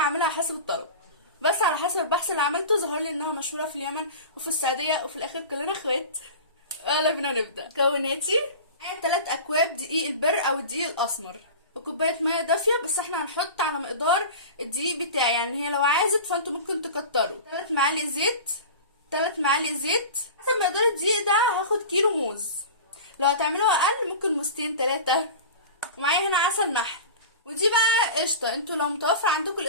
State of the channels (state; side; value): inverted; both; correlation -0.33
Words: حسب الطلب، بس على حسب البحث اللي عملته ظهر لي انها مشهورة في اليمن وفي السعودية، وفي الاخر كلنا اخوات. يلا بينا نبدأ. مكوناتي: معايا 3 اكواب دقيق البر او الدقيق الاسمر، وكوبايه ميه دافيه، بس احنا هنحط على مقدار الدقيق بتاعي، يعني هي لو عازت فانتوا ممكن تكتروا. 3 معالق زيت، 3 معالق زيت. حسب مقدار الدقيق ده هاخد كيلو موز، لو هتعملوها اقل ممكن موزتين 3. ومعايا هنا عسل نحل، ودي بقى قشطه. انتوا لو متوفر عندكم